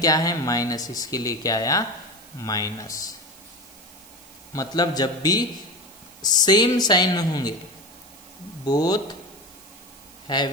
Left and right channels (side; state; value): right; noise; hiss, 22 dB below the sound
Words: क्या है, माइनस, इसके लिए क्या आया, माइनस। मतलब जब भी सेम साइन होंगे, बोथ